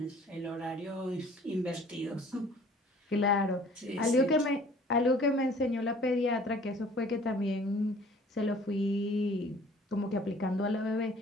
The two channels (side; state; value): both; normal; correlation 0.53